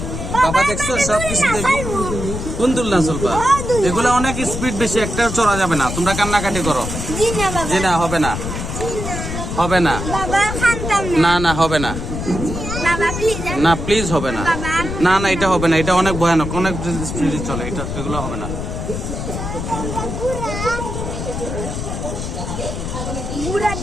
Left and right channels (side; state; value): left; noise; rumble, 5 dB below the sound